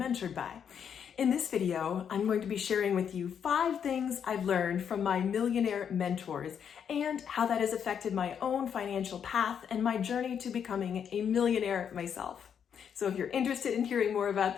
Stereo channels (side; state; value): right; quieter; 7.9 dB